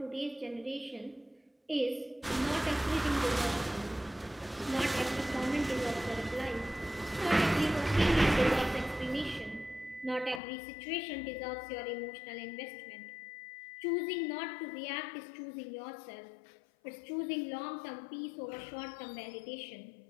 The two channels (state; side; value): drops out; right; at 10.4 s